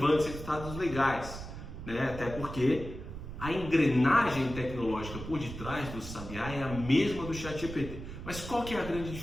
resultados legais, né? Até porque a engrenagem tecnológica por detrás do Sabiá é a mesma do ChatGPT. Mas qual que é a grande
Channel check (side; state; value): right; noise; rumble, 10 dB below the sound